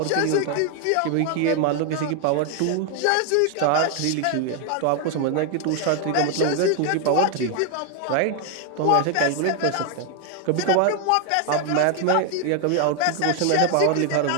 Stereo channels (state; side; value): different; both; correlation 0.00